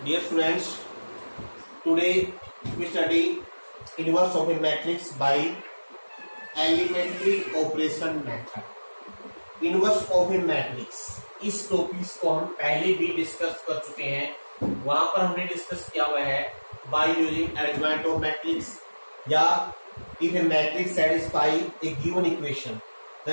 students, today we study inverse of a matrix by elementary operation method. Inverse of a matrix इस topic को हम पहले भी discuss कर चुके हैं। वहां पर हमने डिस्कस किया हुआ है by using arrangement of matrix या if a matrix satisfy a given equation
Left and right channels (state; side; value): inverted; both; correlation -1.00